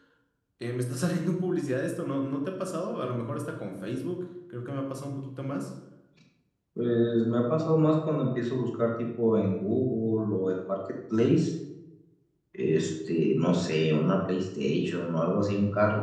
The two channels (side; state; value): both; identical; correlation 1.00